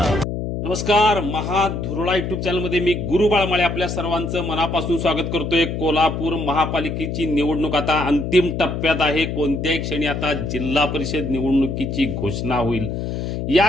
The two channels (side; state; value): left; noise; hum, 3 dB below the sound